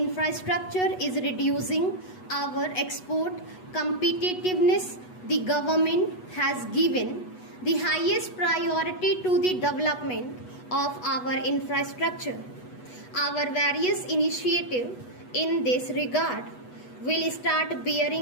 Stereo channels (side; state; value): right; late; 8.1 ms